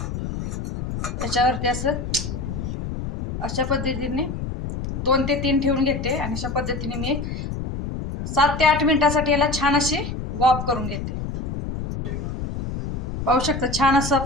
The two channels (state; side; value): noise; left; rumble, 5 dB below the sound